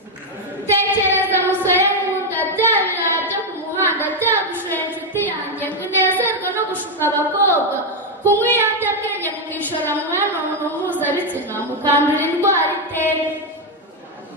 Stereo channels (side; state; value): both; normal; correlation 0.04